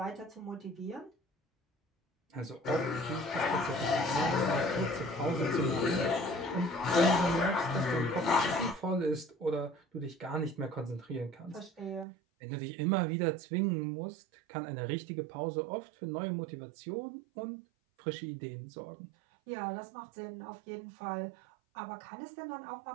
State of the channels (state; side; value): drops out; left; at 12.1 s